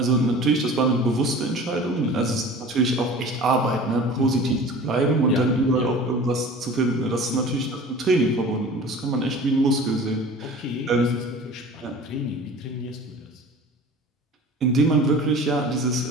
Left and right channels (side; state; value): both; normal; correlation 0.41